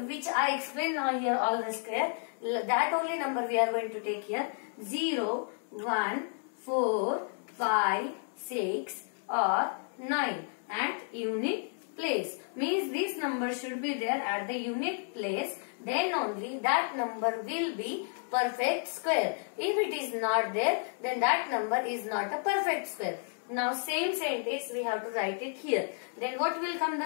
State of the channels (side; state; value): right; silent; 57 dB below the other